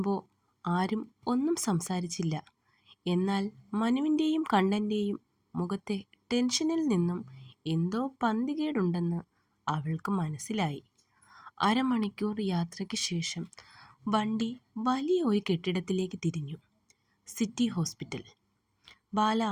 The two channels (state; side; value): identical; both; correlation 1.00